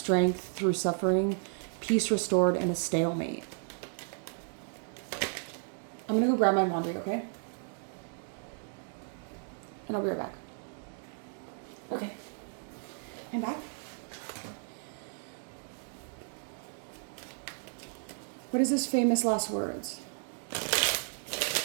through suffering, peace restored, and a stalemate. I'm gonna go grab my laundry, okay? And I'll be right back. Okay. I'm back. What is this famous last words?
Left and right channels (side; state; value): left; silent; 55 dB below the other